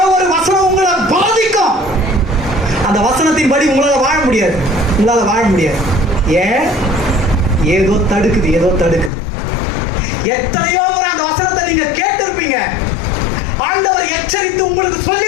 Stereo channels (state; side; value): drops out; right; at 9.1 s